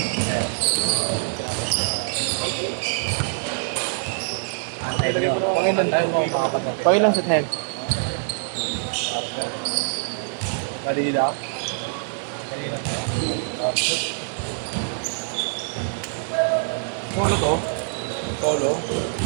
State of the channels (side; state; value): left; silent; digital silence